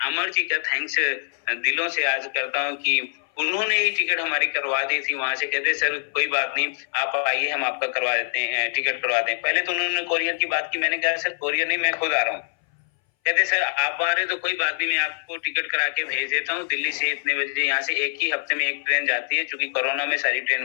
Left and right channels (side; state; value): right; silent; 60 dB below the other